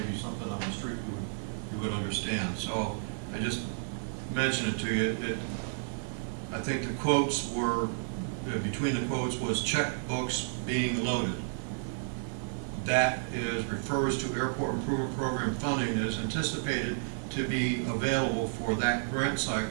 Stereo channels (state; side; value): silent; left; digital silence